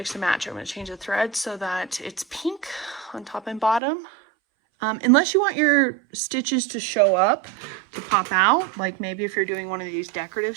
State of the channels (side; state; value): left; drops out; at 3.8 s